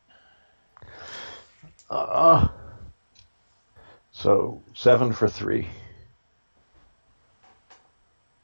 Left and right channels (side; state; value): both; inverted; correlation -1.00